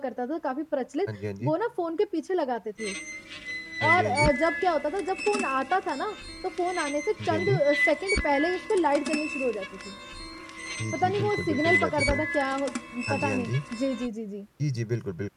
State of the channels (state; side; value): identical; both; correlation 1.00